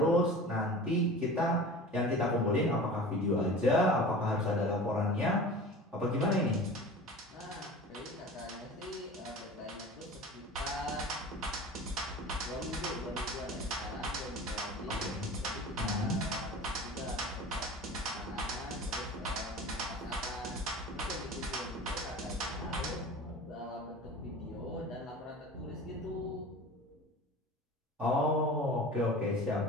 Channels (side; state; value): both; normal; correlation 0.37